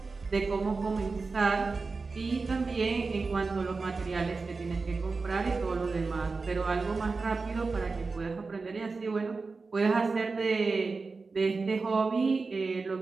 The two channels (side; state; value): left; quieter; 4.2 dB